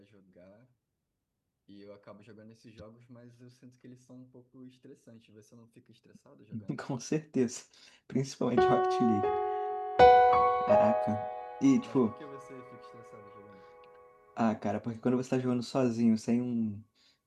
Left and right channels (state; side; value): identical; both; correlation 1.00